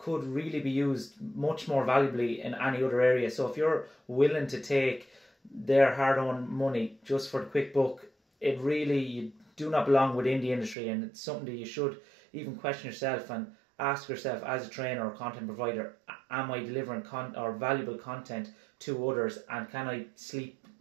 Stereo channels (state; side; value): drops out; left; at 10.8 s